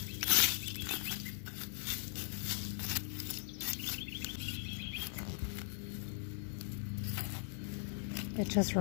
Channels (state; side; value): silent; right; digital silence